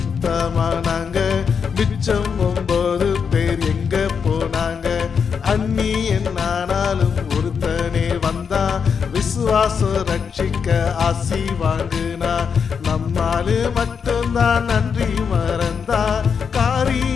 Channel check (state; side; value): quieter; right; 6.4 dB